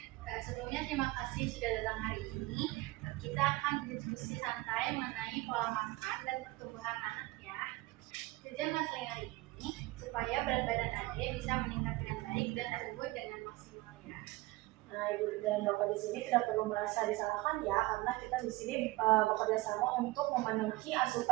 Sebelumnya terima kasih sudah datang hari ini. Kita akan berdiskusi santai mengenai pola makan dan pertumbuhan anak ya. Tujuan konseling hari ini supaya berat badan Ade bisa meningkat dengan baik dan tumbuh dengan maksimal ya. Nah, Ibu dan Bapak di sini tidak perlu merasa disalahkan ya, karena kita di sini bekerja sama untuk memenuhi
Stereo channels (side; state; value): left; quieter; 20.4 dB